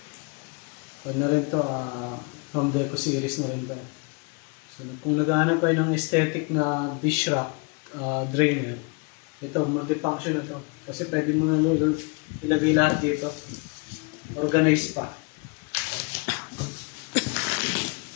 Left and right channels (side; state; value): right; quieter; 32.9 dB